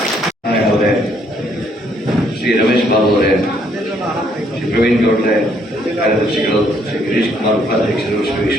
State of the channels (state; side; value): normal; both; correlation 0.68